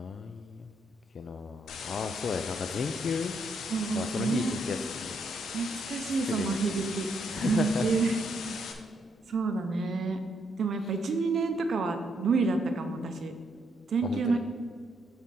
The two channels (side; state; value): both; normal; correlation 0.75